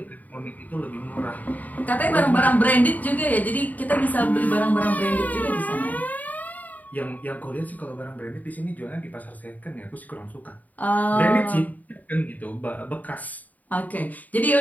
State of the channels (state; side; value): late; right; 0.077 ms